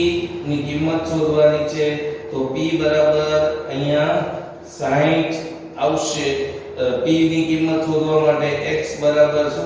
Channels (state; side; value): identical; both; correlation 1.00